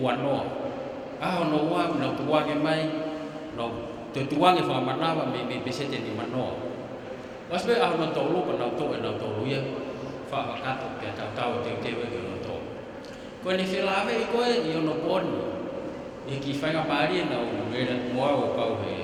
Aho no ua na tuange mai no te tuange fa manawa me pesete ni manoa. Wasbe aho no tolu pa na to e na tolu ia fa kato pe tau te e no to. Ko ni filave i koe i ono poni. E ki whainga pari na o mera moa o pau he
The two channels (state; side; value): identical; both; correlation 1.00